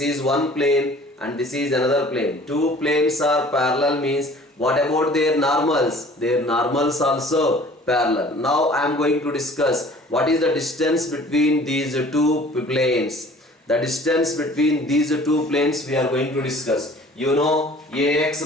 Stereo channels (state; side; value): normal; both; correlation 0.50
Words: is one plane and this is another plane. Two planes are parallel means what about their normals? Their normals also parallel. Now I am going to discuss what is the distance between these two planes. The distance between these two planes we are going to discuss. You know ax